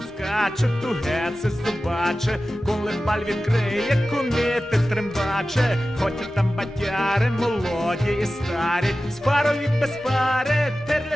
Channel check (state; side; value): normal; both; correlation 0.95